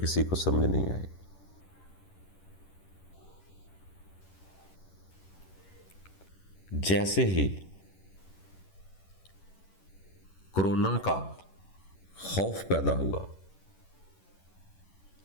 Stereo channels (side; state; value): right; late; 11 ms